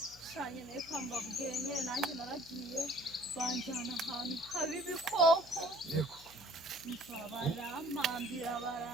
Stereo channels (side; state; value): left; noise; hum, 23 dB below the sound